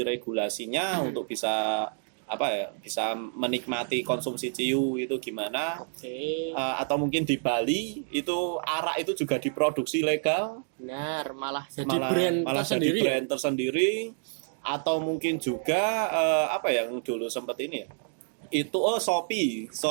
untuk bisa bisa menikmati konsumsi ciu itu gimana. Atau mungkin di Bali itu arak itu juga diproduksi legal. Benar, malah jadi brand tersendiri. Atau mungkin juga yang dulu sempat ini ya. Itu Shopee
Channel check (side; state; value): left; silent; digital silence